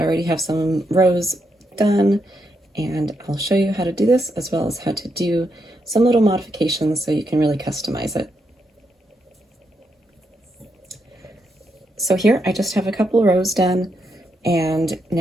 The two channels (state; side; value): normal; both; correlation 0.81